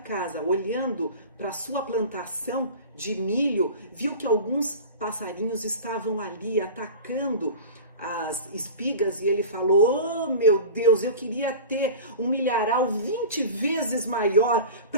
olhando para sua plantação de milho, viu que alguns passarinhos estavam ali atacando as espigas e ele falou: oh meu Deus, eu queria ter um milharal 20 vezes maior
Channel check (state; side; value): inverted; both; correlation -0.34